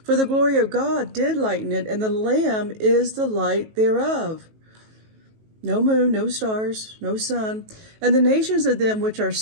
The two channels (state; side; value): late; left; 19 ms